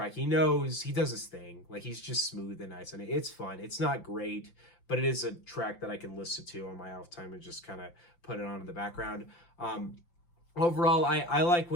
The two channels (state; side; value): late; right; 5.8 ms